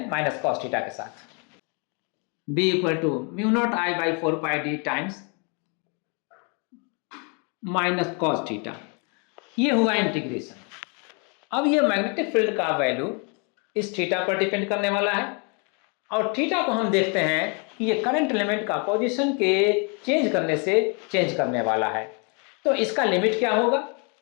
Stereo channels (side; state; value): right; quieter; 35.6 dB